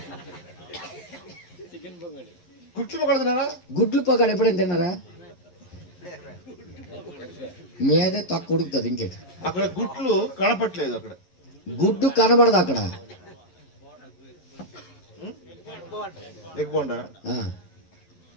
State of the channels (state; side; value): late; right; 11 ms